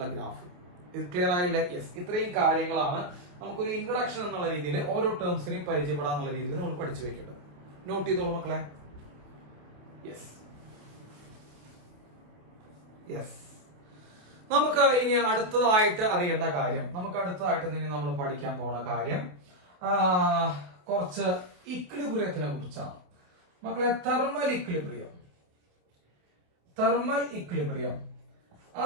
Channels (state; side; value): late; left; 28 ms